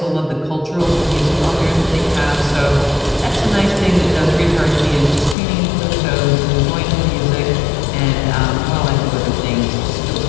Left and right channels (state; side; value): drops out; right; at 5.4 s